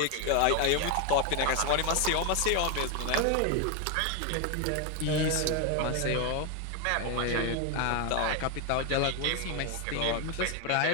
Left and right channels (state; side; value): different; both; correlation 0.01